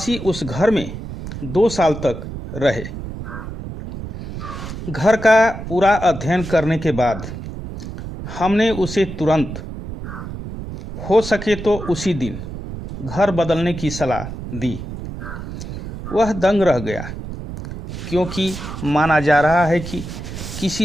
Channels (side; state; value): right; noise; rumble, 9 dB below the sound